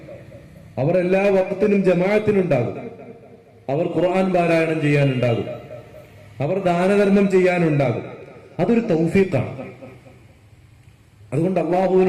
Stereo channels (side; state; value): both; identical; correlation 1.00